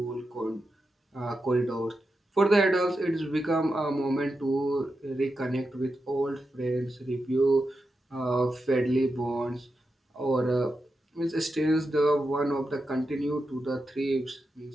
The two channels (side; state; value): both; normal; correlation 0.89